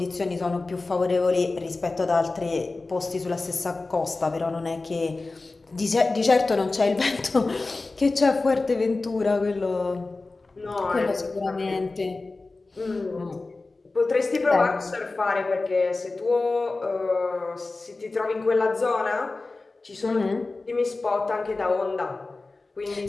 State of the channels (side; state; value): right; quieter; 3.5 dB